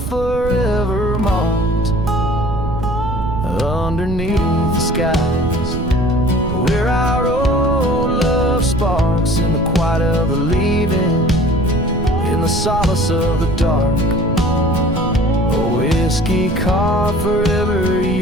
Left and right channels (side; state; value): right; noise; rumble, 6 dB below the sound